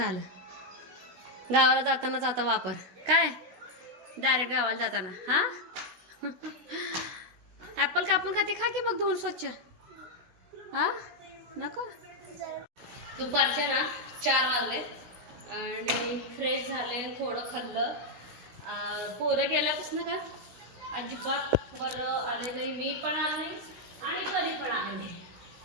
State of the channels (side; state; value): left; late; 16 ms